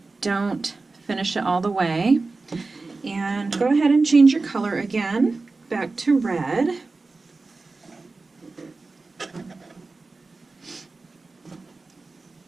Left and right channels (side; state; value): left; quieter; 3.7 dB